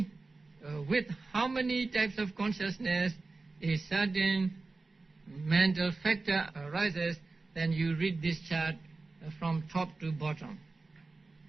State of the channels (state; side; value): quieter; left; 3.7 dB